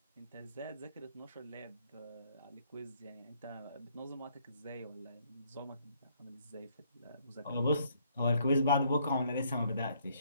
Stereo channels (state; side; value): inverted; both; correlation -0.68